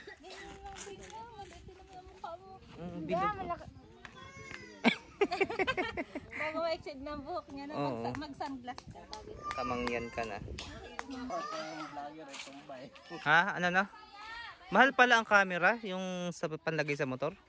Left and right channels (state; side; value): identical; both; correlation 1.00